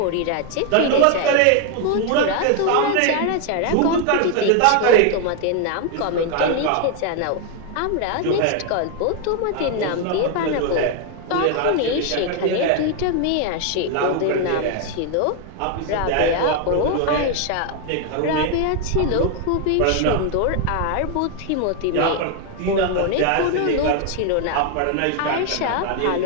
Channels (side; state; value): both; different; correlation 0.01